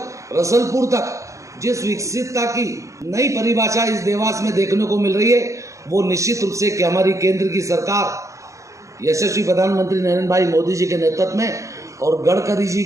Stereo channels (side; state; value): left; late; 0.15 ms